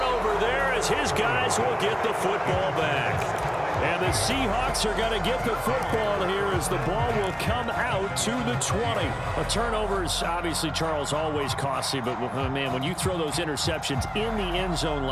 there as his guys will get the football back. And the Seahawks are going to get the football here as the ball will come out to the 20. A turnover is obviously, Charles, always costly, but, man, when you throw those interceptions in the end zone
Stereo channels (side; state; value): both; identical; correlation 1.00